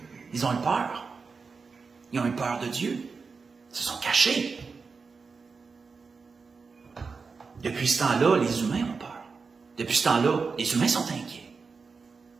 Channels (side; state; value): left; quieter; 4.9 dB